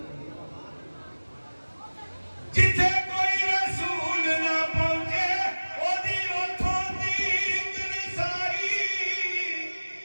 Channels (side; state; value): both; inverted; correlation -1.00